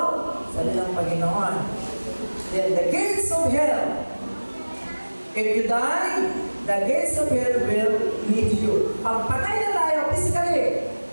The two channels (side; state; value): both; inverted; correlation -1.00